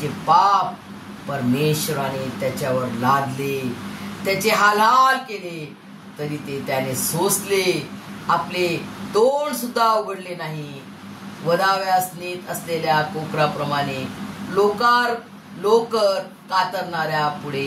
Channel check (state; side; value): identical; both; correlation 1.00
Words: पाप परमेश्वराने त्याच्यावर लादले. त्याचे हाल केले, तरी ते त्याने सोसले. आपले तोंड सुद्धा उघडले नाही. वधाव्यास नेत असलेल्या कोकराप्रमाणे लोकर कातरणाऱ्या पुढे